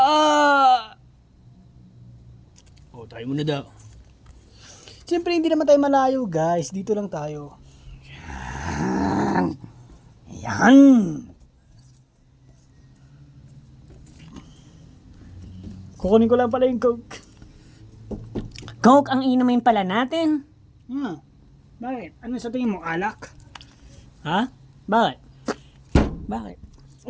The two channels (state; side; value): identical; both; correlation 1.00